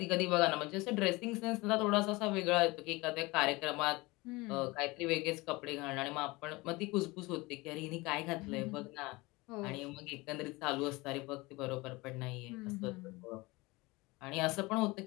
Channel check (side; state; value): right; quieter; 22.9 dB